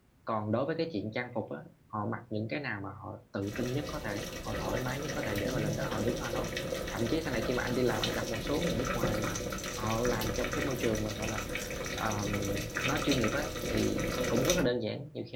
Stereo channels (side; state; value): both; identical; correlation 1.00